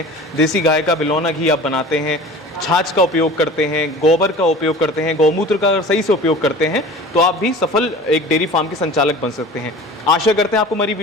देसी गाय का बिलौना घी आप बनाते हैं, छाछ का उपयोग करते हैं, गोबर का उपयोग करते हैं, गौमूत्र का अगर सही से उपयोग करते हैं तो आप भी सफल एक डेयरी फार्म के संचालक बन सकते हैं। आशा करते हैं आपको हमारी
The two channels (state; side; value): normal; both; correlation 0.40